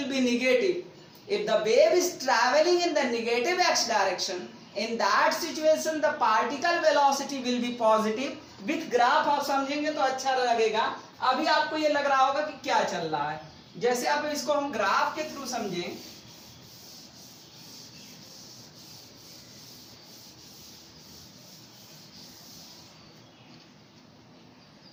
be negative. If the wave is traveling in the negative x direction, in that situation the particle velocity will be positive. With graph आप समझेंगे तो अच्छा लगेगा। अभी आपको ये लग रहा होगा कि क्या चल रहा है, जैसे आप इसको हम ग्राफ के थ्रू समझें।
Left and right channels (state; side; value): identical; both; correlation 1.00